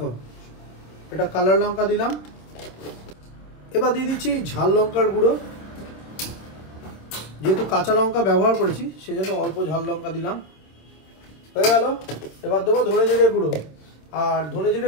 এটা কালার লঙ্কা দিলাম। এবার দিয়ে দিচ্ছি ঝাল লঙ্কার গুঁড়ো, যেহেতু কাঁচা লঙ্কা ব্যবহার করেছি সেজন্য অল্প ঝাল লঙ্কা দিলাম। হয়ে গেল। এবার দেবো ধনে জিরে গুঁড়ো। আর ধনে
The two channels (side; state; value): right; late; 26 ms